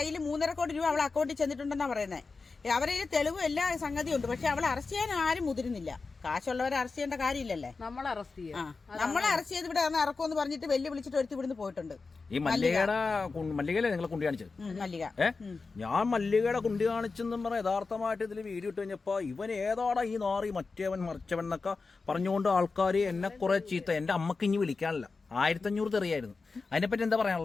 3.5 കോടി രൂപ അവളെ അക്കൗണ്ടിൽ ചെന്നിട്ടുണ്ടെന്നാ പറയുന്നത്. അവരെ തെളിവും എല്ലാ സംഗതിയും ഉണ്ട്. പക്ഷെ അവളെ അറസ്റ്റ് ചെയ്യാൻ ആരും മുതിരുന്നില്ല. കാശുള്ളവരെ അറസ്റ്റ് ചെയ്യേണ്ട കാര്യമില്ലല്ലേ? നമ്മളെ അറസ്റ്റ് ചെയ്ത് ഇവിടെ ഇറക്കുമെന്ന് പറഞ്ഞിട്ട് വെല്ലു വിളിച്ചിട്ട് ഒരുത്തി ഇവിടുന്ന് പോയിട്ടുണ്ട്. ഈ മല്ലികയിലെ നിങ്ങളെ കുണ്ടി കാണിച്ചത്? ഞാൻ മല്ലികയുടെ കുണ്ടി കാണിച്ചെന്നും പറഞ്ഞ യഥാർത്ഥമായിട്ട് ഇതിൽ വീഡിയോ ഇട്ട് കഴിഞ്ഞപ്പോ ഇവൻ ഏതാടാ ഈ നാറി, മറ്റേവൻ മറിച്ചവൻ എന്നൊക്കെ പറഞ്ഞുകൊണ്ട് ആൾക്കാർ എന്നെ കുറെ ചീത്ത. എന്റെ അമ്മക്ക് ഇനി വിളിക്കാനില്ല. 1500 തെറിയായിരുന്നു. അതിനെപ്പറ്റി എന്താ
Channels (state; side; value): quieter; right; 4.2 dB